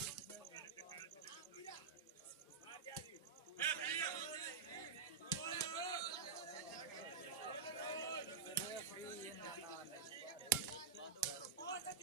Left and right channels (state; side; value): quieter; left; 5.8 dB